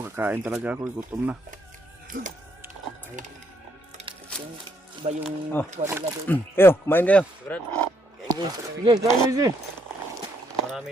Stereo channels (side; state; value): both; normal; correlation 0.73